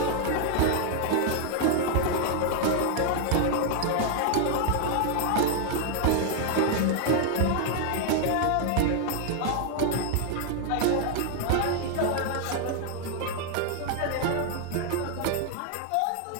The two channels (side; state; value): both; different; correlation 0.00